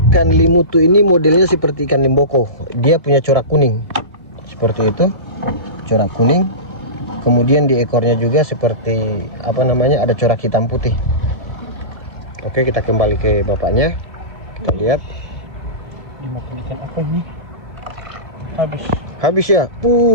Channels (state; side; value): late; left; 1.7 ms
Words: limutu ini modelnya seperti ikan limboko. Dia punya corak kuning. Seperti itu. Corak kuning. Kemudian di ekornya juga seperti apa namanya? Ada corak hitam putih. Oke, kita kembali ke bapaknya. Kita lihat. Dimakan ikan apa ini? Habis ya.